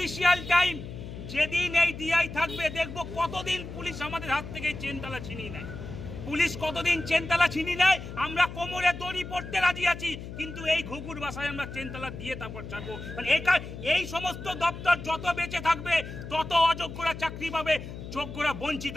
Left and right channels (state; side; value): noise; left; hum, 10 dB below the sound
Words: টাইম যেদিন এই ডিআই থাকবে, দেখবো কতদিন পুলিশ আমাদের হাত থেকে চেনতালা ছিনিয়ে নেয়। পুলিশ কতদিন চেনতালা ছিনিয়ে নেয়, আমরা কোমরে দড়ি পড়তে রাজি আছি, কিন্তু এই ঘুঘুর বাসায় আমরা চেনতালা দিয়ে তারপর ছাড়বো। মানে এই সমস্ত দপ্তর যত বেঁচে থাকবে তত অযোগ্যরা চাকরি পাবে, যোগ্যরা বঞ্চিত